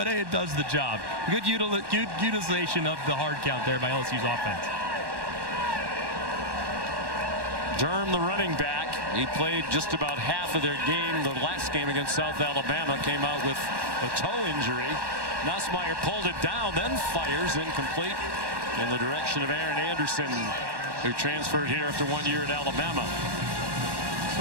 hey, it does the job. Good utilization of the hard count there by LSU's offense. Durham, the running back, he played just about half of their game. The last game against South Alabama, came out with a toe injury. Nussmeier pulled it down, then fires incomplete in the direction of Aaron Anderson, who transferred here after 1 year at Alabama.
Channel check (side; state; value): left; late; 1.1 ms